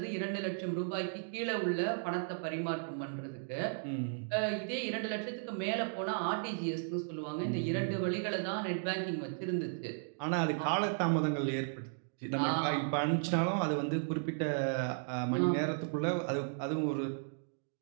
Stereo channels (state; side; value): silent; left; digital silence